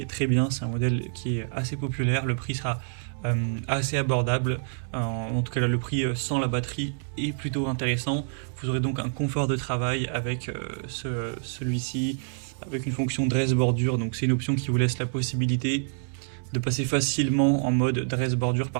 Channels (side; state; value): left; silent; digital silence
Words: très bien. C'est un modèle qui est assez populaire, le prix sera assez abordable, en tout cas là, le prix sans la batterie est plutôt intéressant. Vous aurez donc un confort de travail avec celui-ci, avec une fonction dress bordure, donc c'est une option qui vous laisse la possibilité de passer facilement en mode dress bordure